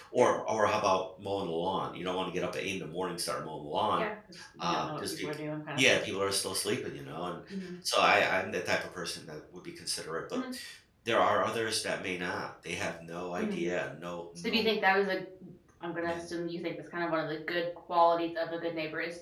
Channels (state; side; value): identical; both; correlation 1.00